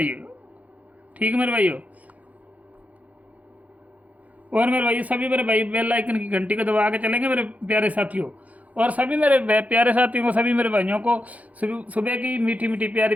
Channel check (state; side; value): late; left; 0.072 ms